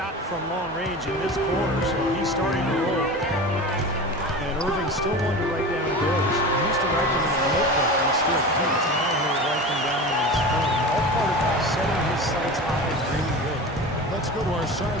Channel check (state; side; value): normal; both; correlation 0.31